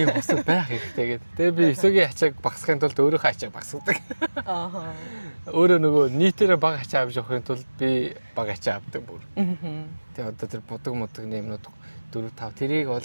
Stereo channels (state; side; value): inverted; both; correlation -1.00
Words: хосод байх хэрэгтэй гэдэг. Тэгээ би эсөгийн ачааг багасгахын тулд өөрийнхөө ачааг багасгадаг. Аа. Өөрөө нөгөө нийтээрээ бага ачаа авч явахын тулд би бага ачаа авдаг бүр. Тэгээ одоо тэр будаг модгийн юмнууд 4 5 тэрийг бол